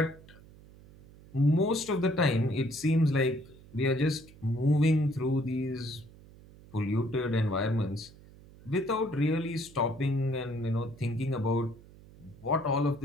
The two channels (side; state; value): right; noise; hum, 22 dB below the sound